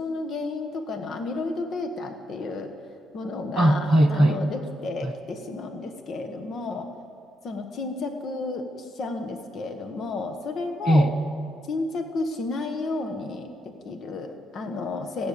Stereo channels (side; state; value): both; normal; correlation 0.82